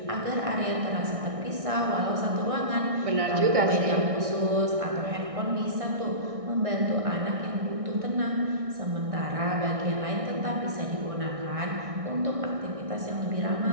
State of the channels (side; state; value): left; late; 1.6 ms